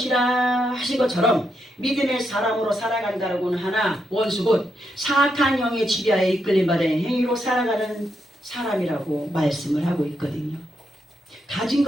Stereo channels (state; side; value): normal; both; correlation 0.81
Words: 하신 것처럼 믿음의 사람으로 살아간다고는 하나 원수 곧 사악한 영의 지배하에 이끌림 받은 행위로 살아가는 사람이라고 말씀을 하고 있거든요. 가진